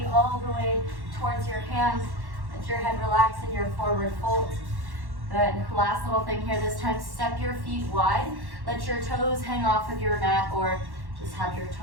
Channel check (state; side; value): late; left; 1.1 ms